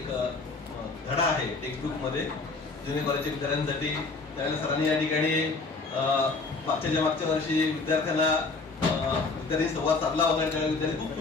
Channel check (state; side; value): quieter; right; 3.9 dB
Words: धडा आहे टेक्स्टबुक मध्ये जुनियर कॉलेजच्या विद्यार्थ्यांसाठी. त्यावेळेला सरांनी या ठिकाणी मागच्या वर्षी विद्यार्थी संवाद साधला होता. त्यावेळेला विद्यार्थी खूप